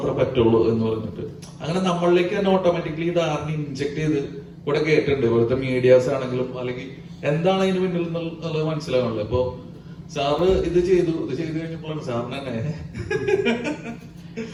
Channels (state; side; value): identical; both; correlation 1.00